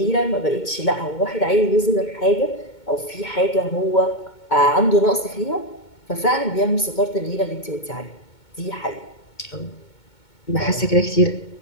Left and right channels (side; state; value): right; late; 2.2 ms